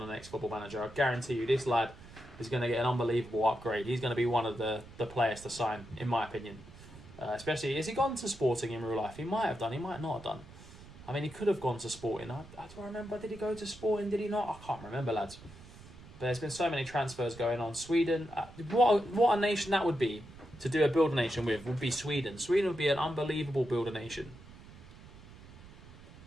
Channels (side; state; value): right; noise; rumble, 18 dB below the sound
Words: the next Football Manager. I guarantee you, this lad is going to get an unbelievable upgrade. He's going to be one of the players to sign, in my opinion. Especially, has he gone to Sporting in real life? He might have done. He might not have done. I mean, he could have gone to Sporting. I don't remember. Did he go to Sporting? Did he not? I can't remember, lads. But there's been so many transfers going on. Sweden, what a nation that would be to do a builder nation with would be Sweden. Sweden would be an unbelievable builder nation.